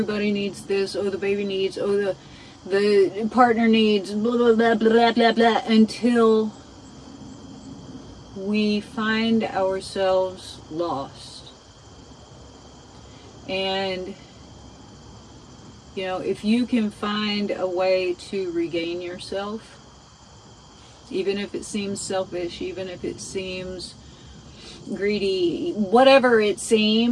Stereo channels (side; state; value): both; identical; correlation 1.00